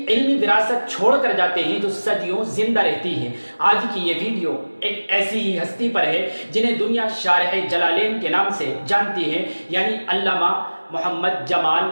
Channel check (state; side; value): inverted; both; correlation -1.00